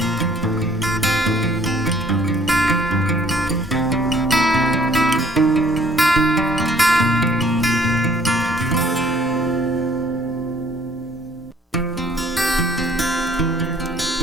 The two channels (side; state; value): both; normal; correlation 0.59